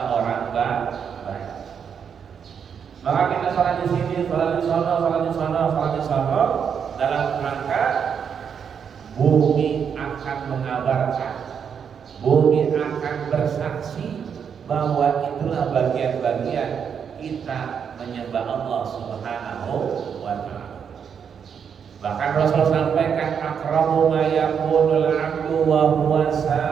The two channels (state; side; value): quieter; left; 7.3 dB